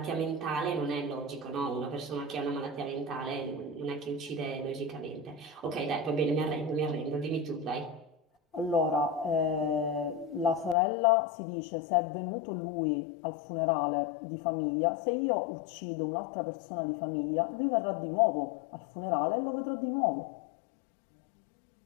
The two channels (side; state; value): right; drops out; at 10.8 s